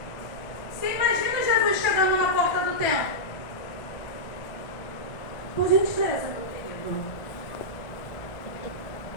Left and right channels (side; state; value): right; late; 1.4 ms